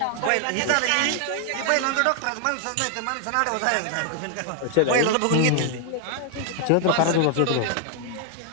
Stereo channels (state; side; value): different; both; correlation 0.00